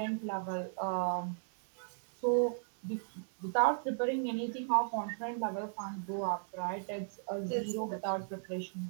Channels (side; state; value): left; silent; digital silence